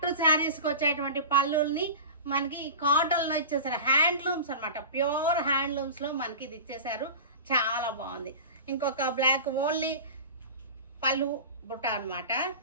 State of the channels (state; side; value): inverted; both; correlation -0.33